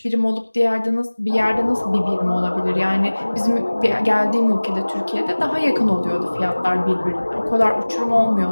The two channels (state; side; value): inverted; both; correlation -1.00